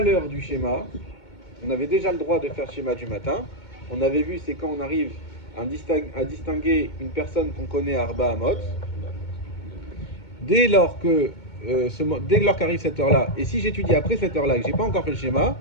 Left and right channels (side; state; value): right; late; 2.2 ms